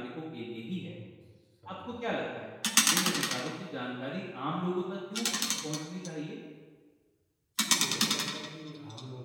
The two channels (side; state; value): both; identical; correlation 1.00